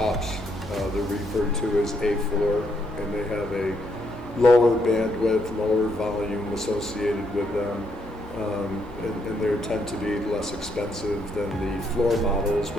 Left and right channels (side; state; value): both; normal; correlation 0.75